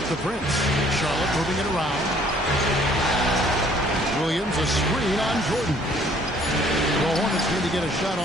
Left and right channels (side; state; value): both; normal; correlation 0.59